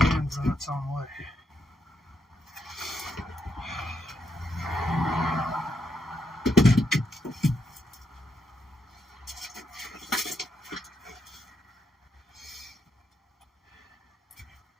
hands in its own way.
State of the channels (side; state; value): both; normal; correlation 0.80